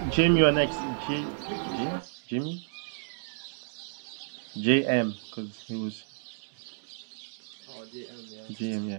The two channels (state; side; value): silent; left; digital silence